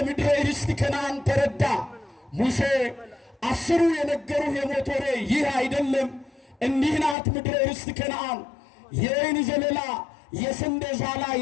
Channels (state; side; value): drops out; right; at 7.2 s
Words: ምድረ ርስት ከነዓን ተረዳ። ሙሴ 10ሩ የነገሩህ የሞት ወሬ ይህ አይደለም፣ እንዲህ ናት ምድረ ርስት ከነዓን፣ የወይን ዘለላ የስንዴ ዛላ